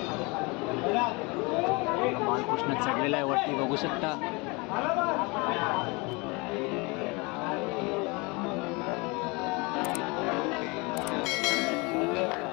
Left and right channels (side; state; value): right; quieter; 27.4 dB